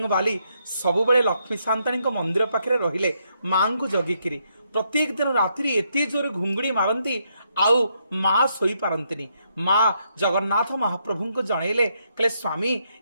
बाली सबुबले लक्ष्मी सांताणी मंदिर पाखे रहिले माँ को जगिकी प्रत्येक दिन रात्रि एत जोर घुंगुड़ी मारती आउ माँ शोई पारंतिनी माँ जगन्नाथ महाप्रभु को जनइले कहले स्वामी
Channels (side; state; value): both; inverted; correlation -0.77